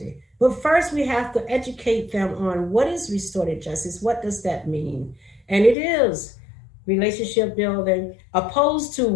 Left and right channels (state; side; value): drops out; right; at 5.8 s